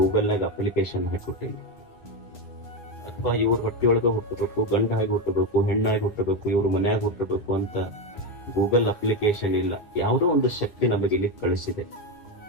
ಅಪ್ಲಿಕೇಶನ್ ಹಾಕಿಕೊಟ್ಟಿಲ್ಲ, ಅಥವಾ ಇವ್ರ ಹೊಟ್ಟಿಯೊಳಗ ಹುಟ್ಟಬೇಕು, ಗಂಡಾಗಿ ಹುಟ್ಟಬೇಕು, ಹೆಣ್ಣಾಗಿ ಹುಟ್ಟಬೇಕು, ಇವ್ರ ಮನ್ಯಾಗ ಹುಟ್ಟಬೇಕು ಅಂತ ಗೂಗಲ್ ಅಪ್ಲಿಕೇಶನ್ ಇಲ್ಲ. ಯಾವುದೋ ಒಂದು ಶಕ್ತಿ ನಮಗೆ ಇಲ್ಲಿ ಕಳಿಸಿದೆ.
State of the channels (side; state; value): right; late; 9.7 ms